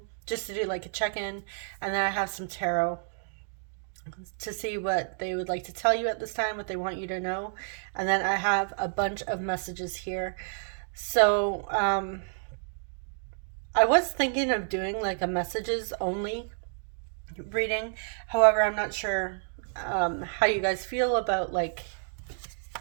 just to do like a check in. And then I have some tarot to see what they would like to tell you at this time, what they want you to know. And then I have a bunch of messages here. So, I was thinking of doing like a messages only reading. However, I'm not sure how you guys feel about like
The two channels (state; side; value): silent; left; digital silence